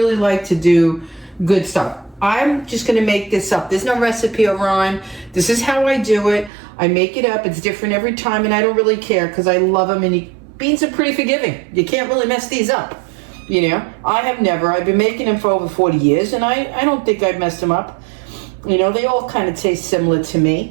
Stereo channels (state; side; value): drops out; left; at 6.5 s